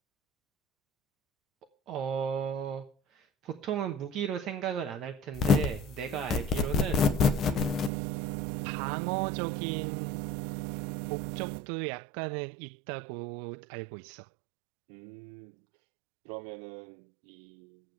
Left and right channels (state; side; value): drops out; left; at 7.9 s